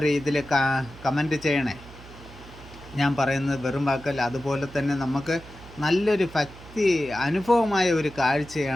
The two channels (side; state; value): right; noise; hum, 18 dB below the sound